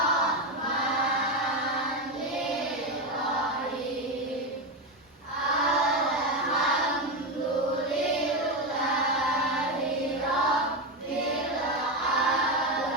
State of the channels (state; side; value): normal; both; correlation 0.13